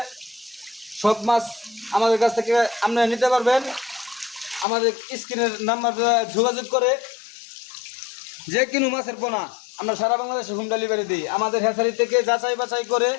সব মাছ আমাদের কাছ থেকে আপনারা নিতে পারবেন। আমাদের স্ক্রিনের নাম্বার যোগাযোগ করে যে কিনো মাছের পোনা আমরা সারা বাংলাদেশে হোম ডেলিভারি দিই। আমাদের হ্যাচারি থেকে যাচাই বাছাই করে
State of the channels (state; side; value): drops out; right; at 4.7 s